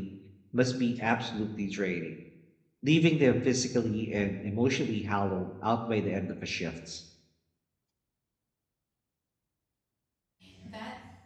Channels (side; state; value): both; identical; correlation 1.00